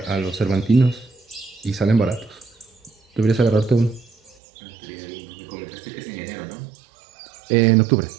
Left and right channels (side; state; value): left; drops out; at 4.4 s